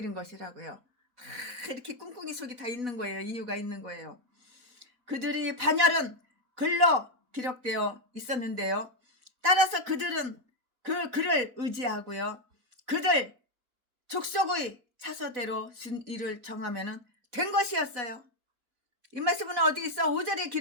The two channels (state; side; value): late; left; 4.0 ms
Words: 것이라고요. 이렇게 꿍꿍이 속이 다 있는 거예요. 이유가 있는 거예요. 그들이 반열은 글로 기록되어 있었는데요. 따라서 그들은 그 글을 의지하고요. 그들 족속의 차서대로 순위를 정하면 된 것이었어요. 이 말씀은 어디 있어? 5절에